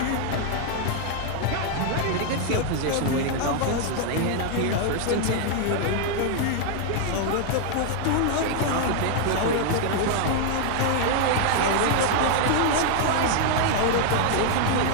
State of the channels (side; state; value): both; different; correlation 0.00